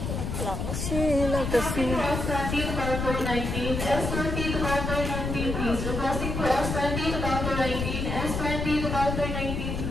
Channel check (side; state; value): left; noise; rumble, 3 dB below the sound